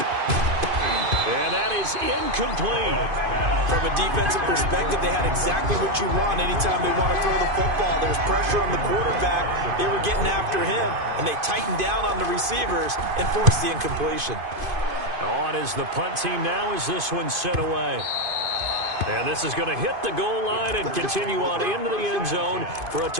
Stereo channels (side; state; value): left; late; 2.5 ms